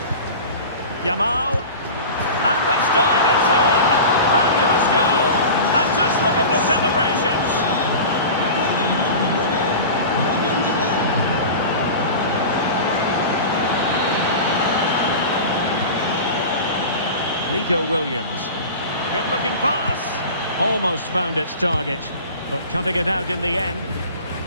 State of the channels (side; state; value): both; inverted; correlation -0.34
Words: Yamal. And this time it's in! Fabulous goal! And just look at the celebrations! Nico Williams. Good-looking pass. Almost found its target, but cutting it out in the end.